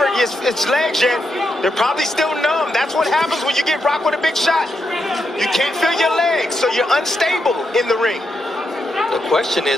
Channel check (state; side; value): normal; both; correlation 0.83